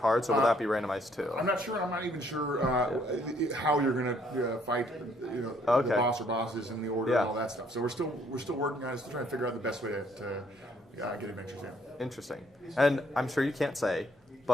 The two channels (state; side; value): normal; both; correlation 0.66